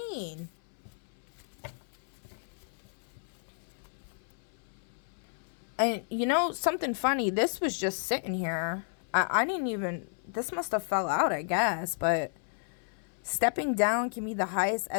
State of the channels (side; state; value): right; silent; 56 dB below the other